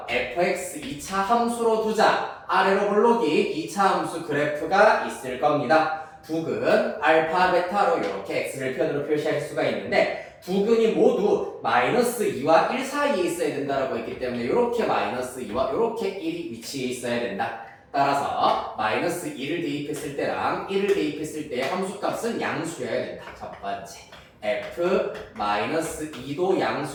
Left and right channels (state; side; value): identical; both; correlation 1.00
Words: fx 2차 함수로 두자. 아래로 볼록이 2차 함수 그래프가 있을 겁니다. 두 근 알파, 베타로 이렇게 x를 편으로 표시할 수가 있는데 두 근이 모두 마이너스 2와 1 사이에 있어야 된다라고 했기 때문에 이렇게 마이너스 2와 이렇게 1이 위치해 있어야 된다. 따라서 마이너스 2를 대입했을 때랑 1을 대입했을 때 함수값은 양수여야 된다. 첫 번째 f 마이너스 2도